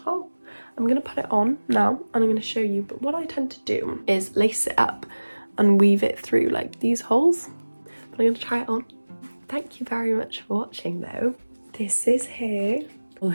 top. I'm going to put it on now and I'm going to show you, but what I tend to do is lace it up and weave it through like these holes. But I'm going to try it on. Thank you very much for watching though. This is here for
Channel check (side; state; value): both; inverted; correlation -1.00